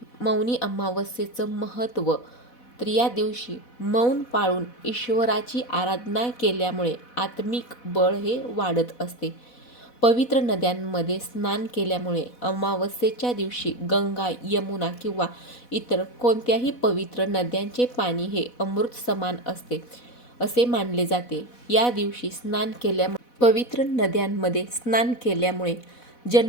मौनी अमावस्येचं महत्त्व, तर या दिवशी मौन पाळून ईश्वराची आराधना केल्यामुळे आत्मिक बळ हे वाढत असते. पवित्र नद्यांमध्ये स्नान केल्यामुळे अमावस्येच्या दिवशी गंगा, यमुना किंवा इतर कोणत्याही पवित्र नद्यांचे पाणी हे अमृत समान असते असे मानले जाते. या दिवशी पवित्र नद्यांमध्ये स्नान केल्यामुळे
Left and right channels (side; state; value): right; late; 4.1 ms